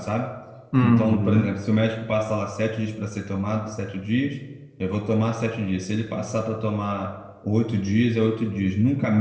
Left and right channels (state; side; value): identical; both; correlation 1.00